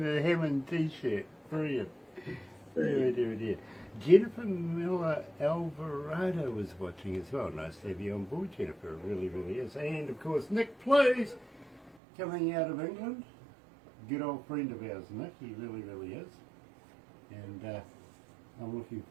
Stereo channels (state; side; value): drops out; left; at 12.0 s